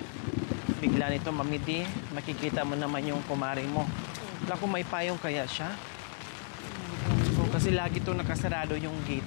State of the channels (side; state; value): right; silent; 56 dB below the other